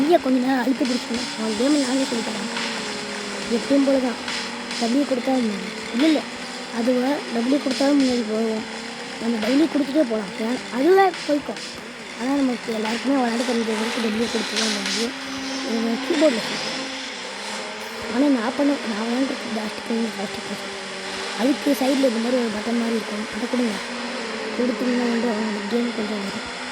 கொஞ்ச நேரம் அழுத்தி பிடிச்சணும். அவன் கேமில் நானே சொல்லி தரேன். எப்பயும் போல தான் டபிள்யூ கொடுத்தா இல்லை அதுவே டபிள்யூ கொடுத்தாலும் முன்னாடி போவோம். நம்ம டெய்லி கொடுத்துட்டே போகலாம். அதுவே போய்க்கும். ஆனால் நமக்கு எல்லாருக்குமே விளையாட தெரிஞ்சவங்களுக்கு டெய்லி கொடுத்து தான் முடியும். கீபோர்டில் சொல்லுவேன். ஆனால் நான் விளையாண்டுருக்கு பிளாஸ்டிக் அதுக்கு சைடில் இந்த மாதிரி ஒரு பட்டன் மாதிரி இருக்கும். அதை கொடுங்க. கொடுத்தீங்கன்னா அவங்க கேம் கொஞ்சம் வரும்.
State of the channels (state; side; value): identical; both; correlation 1.00